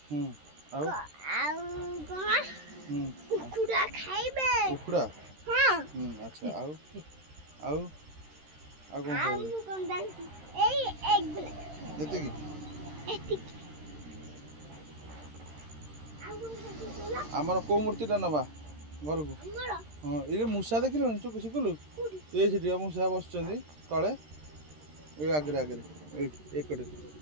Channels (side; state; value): left; late; 13 ms